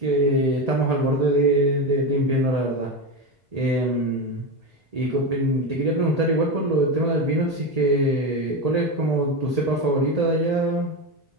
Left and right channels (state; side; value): normal; both; correlation 0.16